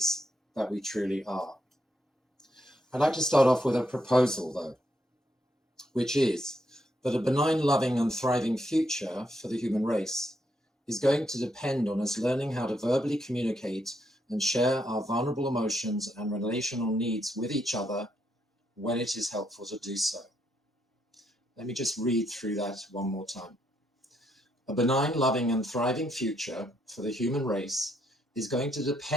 that we truly are. I'd like to start off with a proposal, though, which is that a benign, loving, and thriving future for the human race is going to depend on us learning how to verbally communicate and share our vulnerable emotions and relational needs with each other when it is helpful to do so. Let me just read through that one more time. A benign, loving, and thriving future for the human race is going to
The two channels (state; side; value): normal; both; correlation 0.77